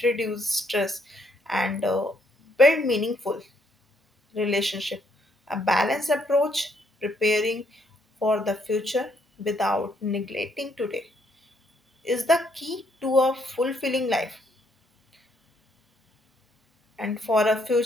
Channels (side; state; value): both; normal; correlation 0.71